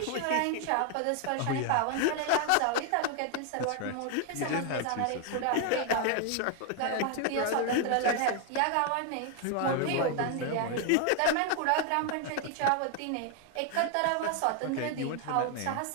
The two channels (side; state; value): both; different; correlation 0.00